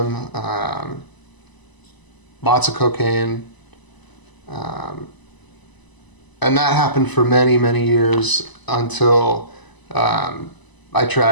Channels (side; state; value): right; late; 1.0 ms